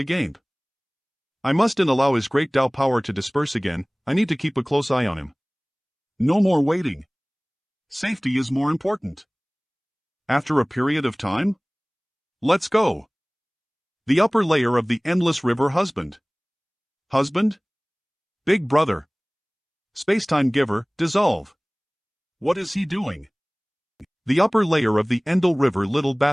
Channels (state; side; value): identical; both; correlation 1.00